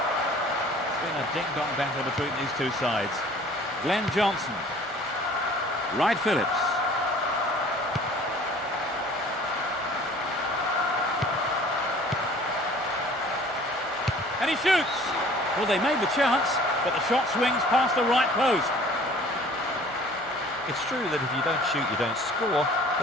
It's been a ding-dong battle between these two sides. Glenn Johnson. Wright Phillips. And he shoots! Well, they made the chance, but the shot swings past the right post. It's true that if you don't shoot, you don't score,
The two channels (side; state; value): both; normal; correlation 0.50